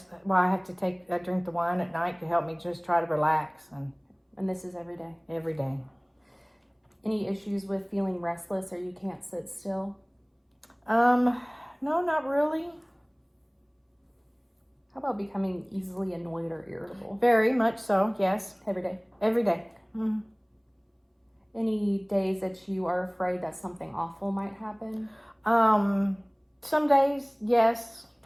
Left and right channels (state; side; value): identical; both; correlation 1.00